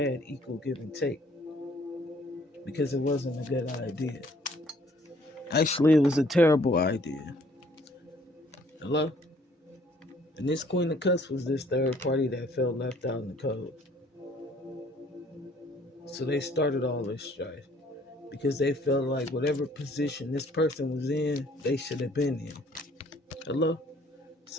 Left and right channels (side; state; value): both; normal; correlation 0.60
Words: equal give and take because it wasn't a good idea. Actually, it was a terrible idea. Hello? And this Queen of Cups was this third party that felt left out in the cold. So they started all this strife because they felt like whatever position this person was in, they should have been in. Hello?